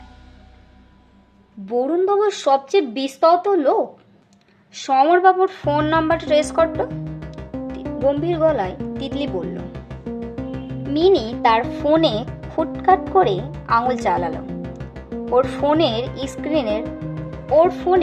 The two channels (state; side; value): identical; both; correlation 1.00